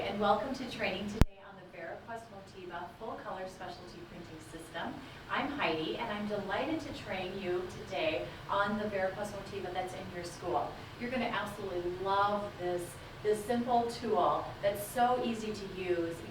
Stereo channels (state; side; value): identical; both; correlation 1.00